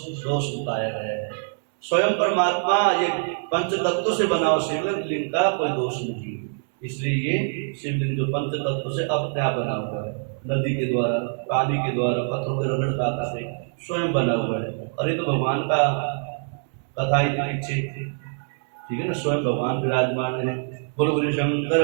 बताया गया है। स्वयं परमात्मा ये पंच तत्वों से बना हुआ शिवलिंग का कोई दोष नहीं। इसलिए ये शिवलिंग जो पंच तत्व से अपने आप बना हुआ है, नदी के द्वारा, पानी के द्वारा, पत्थरों के रगड़ खाता से स्वयं बना हुआ है। और ये तो भगवान का कथा ही पीछे ठीक है ना, स्वयं भगवान विराजमान है। बोलो गुरु शंकर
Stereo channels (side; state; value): left; silent; 62 dB below the other